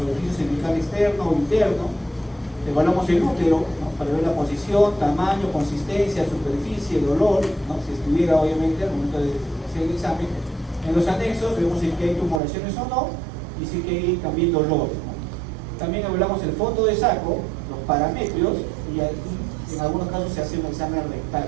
cervical externo o interno. Evaluamos el útero, ¿no? Para ver la posición, tamaño, consistencia, superficie, dolor, ¿no? Si estuviera obviamente al momento de hacer el examen. En los anexos vemos si hay tumoraciones o no y si hay también dolor, ¿no? También evaluamos el fondo de saco, los parametrios y en algunos casos se hace un examen rectal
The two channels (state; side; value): drops out; left; at 12.4 s